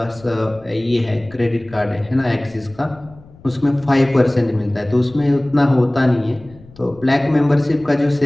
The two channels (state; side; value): noise; left; rumble, 23 dB below the sound